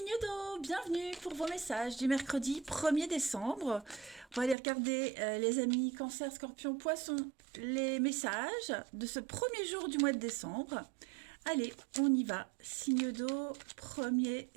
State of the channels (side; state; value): left; drops out; at 4.5 s